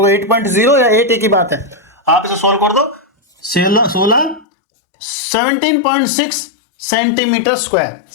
8.0 या 8 एक ही बात है, आप इसे सोल्व कर दो। 17.6 सेंटीमीटर स्क्वायर,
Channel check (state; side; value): drops out; right; at 4.5 s